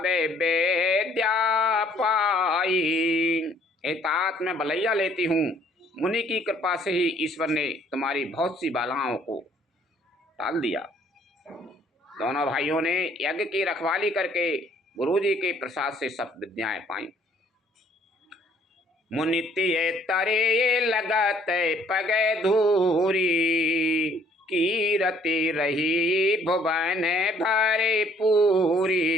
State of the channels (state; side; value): normal; both; correlation 0.62